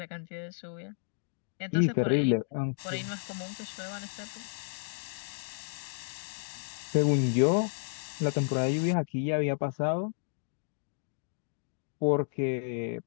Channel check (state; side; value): silent; right; digital silence